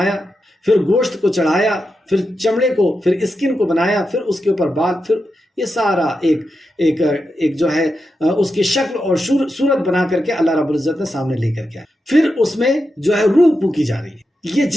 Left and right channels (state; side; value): normal; both; correlation 0.88